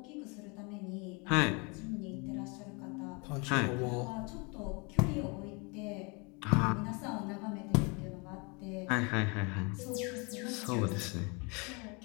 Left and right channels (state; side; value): quieter; right; 30.8 dB